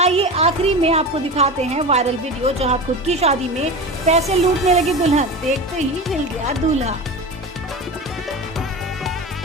आखिरी में आपको दिखाते हैं वायरल वीडियो, जहां खुद की शादी में पैसे लूटने लगी दुल्हन, देखते ही हिल गया दूल्हा।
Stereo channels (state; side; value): normal; both; correlation 0.28